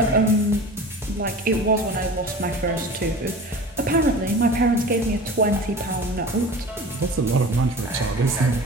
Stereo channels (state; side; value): normal; both; correlation 0.37